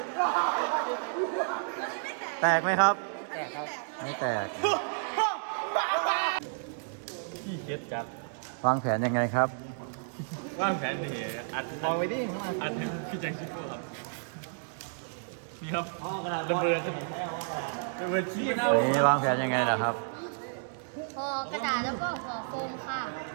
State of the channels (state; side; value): silent; left; digital silence